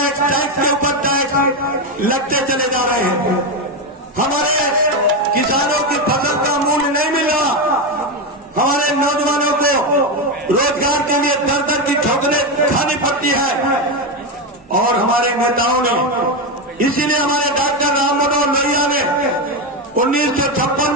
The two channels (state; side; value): normal; both; correlation 0.11